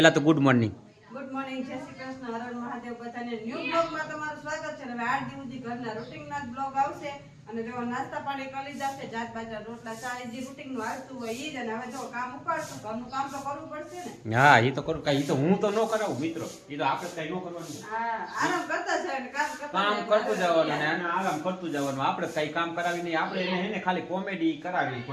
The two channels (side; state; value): both; identical; correlation 1.00